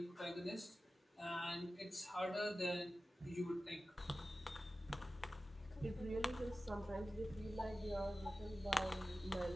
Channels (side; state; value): both; normal; correlation 0.94